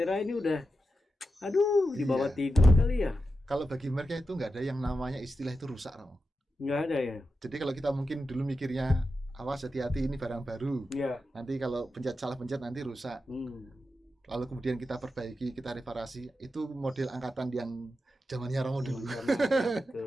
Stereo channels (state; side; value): normal; both; correlation 0.89